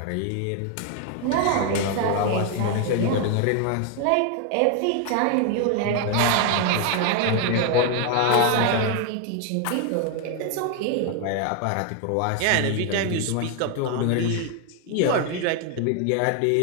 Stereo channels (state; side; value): different; both; correlation 0.01